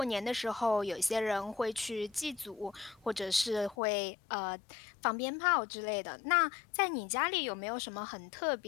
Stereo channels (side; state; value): right; drops out; at 3.8 s